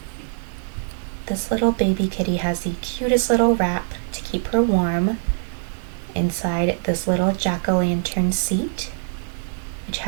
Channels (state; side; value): silent; left; digital silence